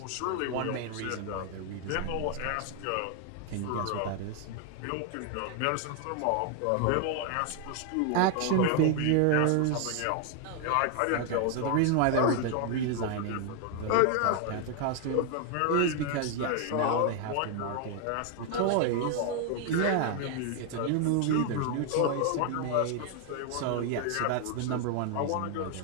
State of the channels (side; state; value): both; different; correlation 0.00